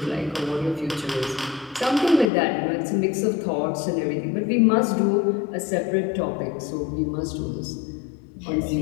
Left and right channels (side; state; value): right; drops out; at 2.2 s